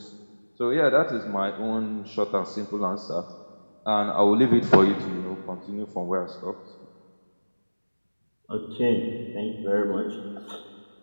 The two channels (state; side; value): inverted; both; correlation -1.00